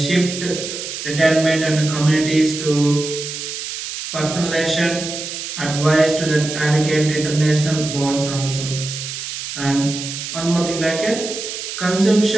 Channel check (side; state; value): right; noise; hiss, 7 dB below the sound